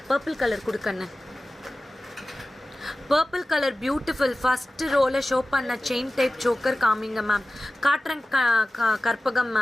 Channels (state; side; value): normal; both; correlation 0.96